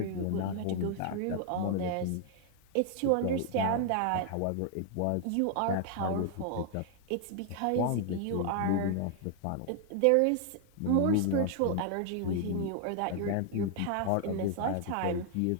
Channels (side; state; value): both; different; correlation 0.00